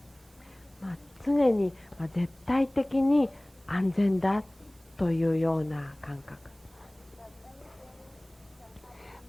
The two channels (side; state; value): right; noise; hiss, 29 dB below the sound